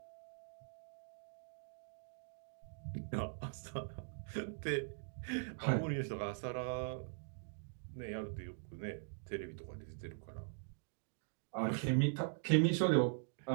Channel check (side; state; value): left; silent; digital silence